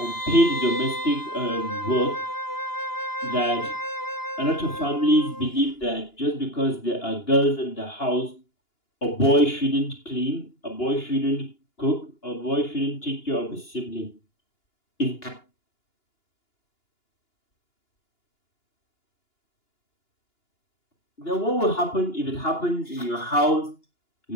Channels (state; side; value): late; right; 2.9 ms